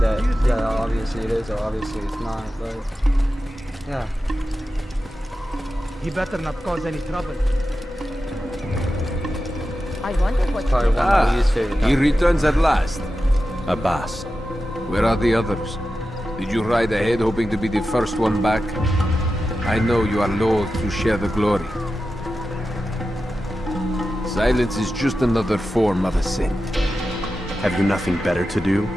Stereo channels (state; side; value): normal; both; correlation 0.92